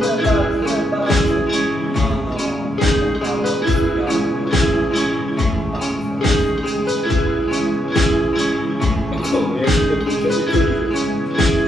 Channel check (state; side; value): normal; both; correlation 0.81